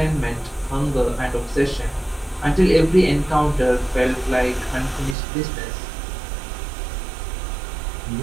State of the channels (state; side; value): drops out; left; at 5.2 s